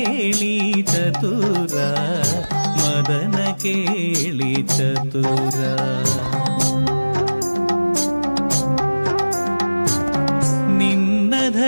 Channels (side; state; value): both; inverted; correlation -1.00